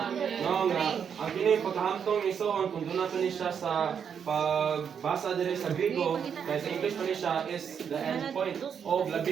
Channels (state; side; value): quieter; left; 7.5 dB